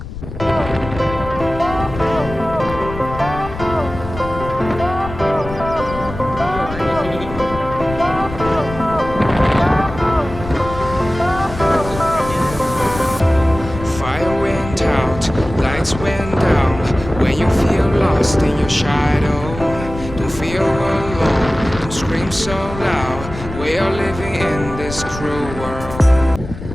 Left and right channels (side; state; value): left; noise; rumble, 11 dB below the sound